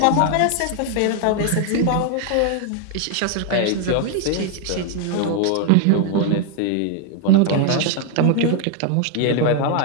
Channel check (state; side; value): different; both; correlation 0.00